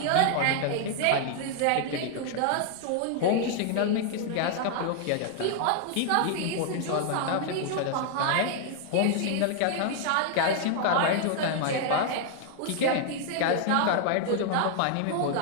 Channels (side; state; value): both; different; correlation 0.00